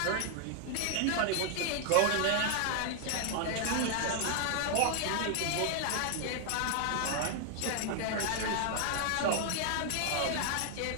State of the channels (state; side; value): different; both; correlation 0.00